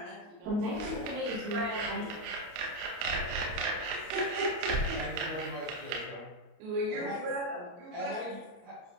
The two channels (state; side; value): late; left; 29 ms